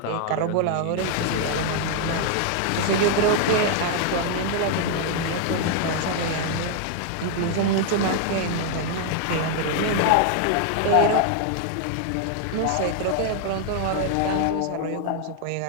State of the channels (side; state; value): both; different; correlation 0.00